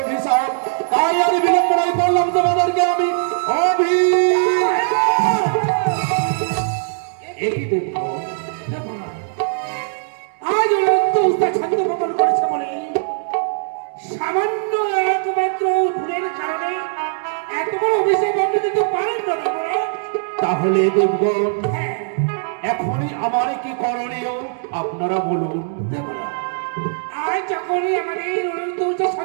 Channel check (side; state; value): left; silent; digital silence